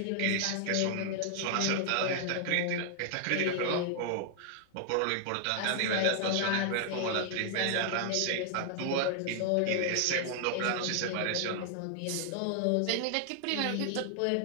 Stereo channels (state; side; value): different; both; correlation 0.00